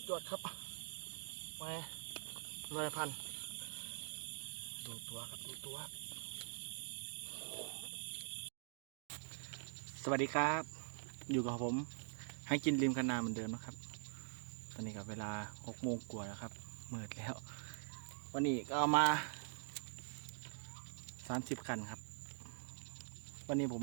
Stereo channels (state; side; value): silent; left; digital silence